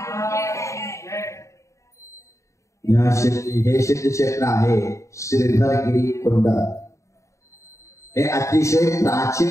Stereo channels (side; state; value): right; late; 0.15 ms